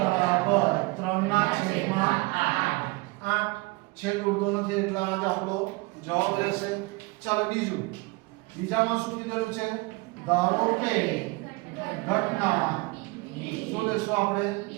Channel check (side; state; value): left; quieter; 24.9 dB